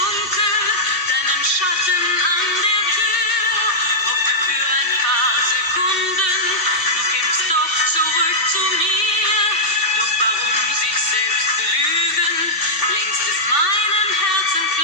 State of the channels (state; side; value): late; right; 2.7 ms